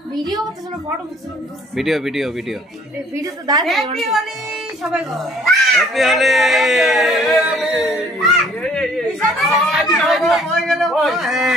Video করতেছ না photo করতেছ? ভিডিও ভিডিও ভিডিও ভিডিও তো দাঁড়ায়। হ্যাপি হোলি সবাই গো। হ্যাপি হোলি।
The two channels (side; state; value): both; normal; correlation 0.58